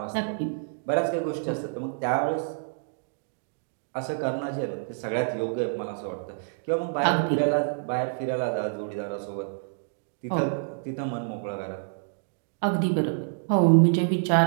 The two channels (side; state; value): left; silent; digital silence